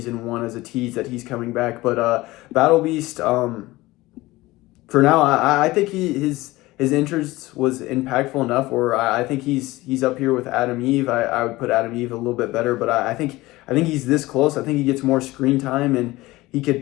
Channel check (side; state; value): right; quieter; 19.2 dB